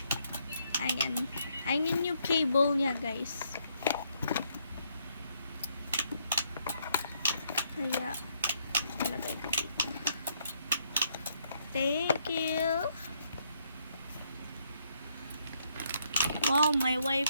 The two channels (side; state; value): both; inverted; correlation -0.72